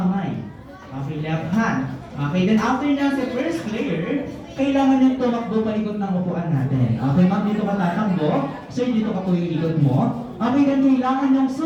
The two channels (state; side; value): identical; both; correlation 1.00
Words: Okay, left hand. Okay, then after na sa first player, kailangan niyang tumakbo palikot ng upuan natin. Okay, ma'am, dito ka tatakbo. Sir, dito ka po yung ikot mo. Okay, then kailangan niyang